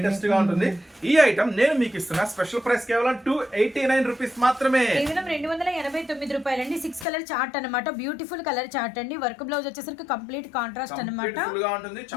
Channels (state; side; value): drops out; right; at 7.1 s